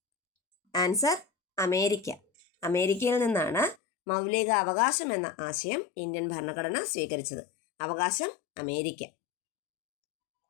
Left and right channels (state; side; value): drops out; right; at 3.8 s